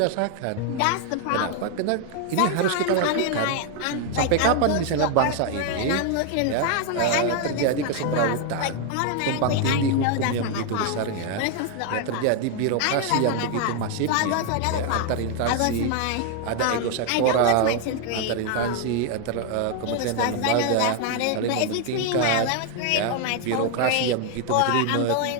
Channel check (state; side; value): different; both; correlation 0.00